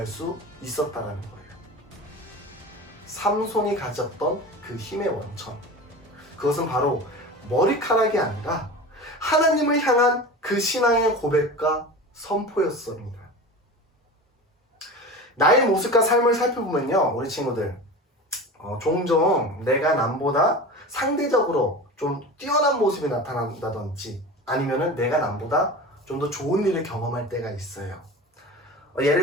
수 있었다는 거예요. 삼손이 가졌던 그 힘의 원천, 그것은 바로 머리카락이 아니라 하나님을 향한 그 신앙의 고백과 선포였습니다. 나의 모습과 삶을 살펴보면요, 우리 친구들 종종 내가 남보다 상대적으로 좀 뛰어난 모습이 나타난다든지 아니면은 내가 남보다 좀 더 좋은 일을 경험할 때가 있어요.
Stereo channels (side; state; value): both; normal; correlation 0.32